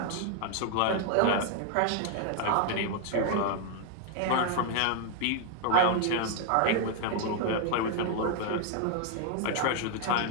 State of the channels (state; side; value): different; both; correlation 0.00